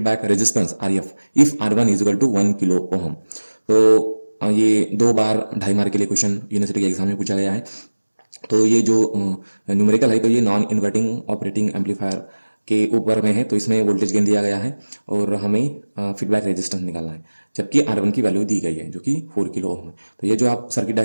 resistance RF if R1 is equal to 1 kilo ओम। तो ये 2 बार 2.5 मार्क के लिए क्वेश्चन यूनिवर्सिटी के एग्जाम में पूछा गया है। तो ये जो न्यूमेरिकल है तो ये नॉन इन्वर्टिंग ऑपरेटिंग एम्पलीफायर के ऊपर में है। तो इसमें वोल्टेज गेन दिया गया है और हमें फीडबैक रेजिस्टेंस निकालना है, जबकि R1 की वैल्यू दी गई है जो कि 4 किलो ओम है। तो ये जो आप सर्किट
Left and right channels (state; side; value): inverted; both; correlation -1.00